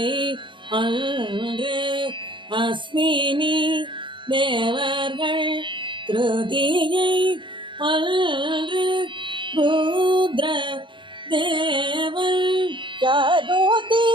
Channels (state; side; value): late; left; 0.24 ms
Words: அன்று அஸ்வினி தேவர்கள் திருதியை அன்று ருத்ர தேவன் சதுர்த்தி